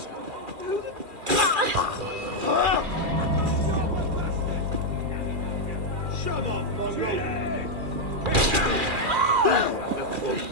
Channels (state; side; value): late; left; 2.4 ms